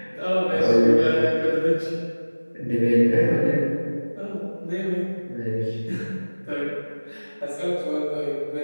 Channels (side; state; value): both; inverted; correlation -1.00